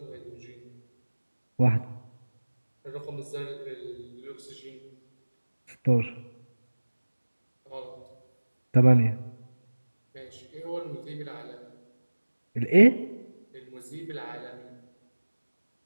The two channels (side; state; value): both; inverted; correlation -1.00